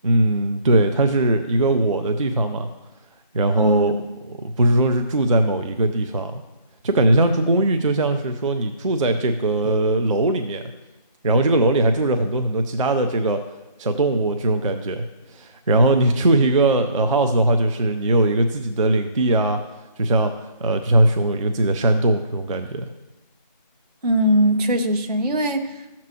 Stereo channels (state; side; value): inverted; both; correlation -0.59